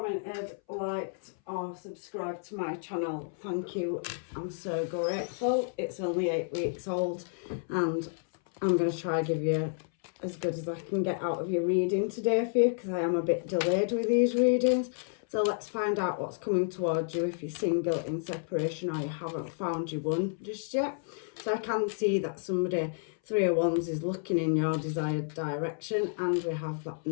liked or subscribed to my channel, thank you. I'm so grateful. It's only 8 weeks old and I'm going to try and give you as good as I can get out of your reading today for you, because I am a bit delayed with these readings. So let's find out what's coming towards you if you're single, in separation, or you haven't found your one just yet. So I can see that somebody, Three of Wands, is looking in your desired direction, and we have that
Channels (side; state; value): right; silent; 57 dB below the other